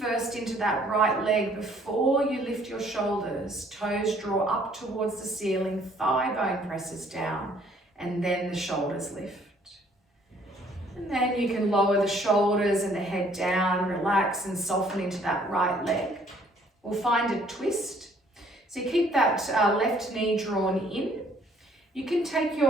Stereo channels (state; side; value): normal; both; correlation 0.61